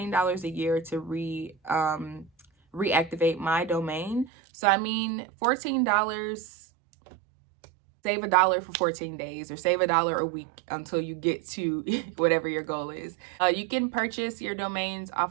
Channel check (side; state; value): left; drops out; at 4.3 s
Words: a year to reactivate my domain. So I mean, $14, save $1 for 14 days, or save $1 a week until you get to whatever your goal is. You can purchase your domains